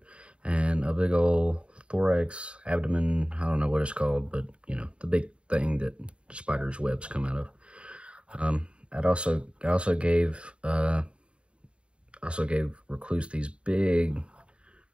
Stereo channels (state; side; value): late; left; 0.056 ms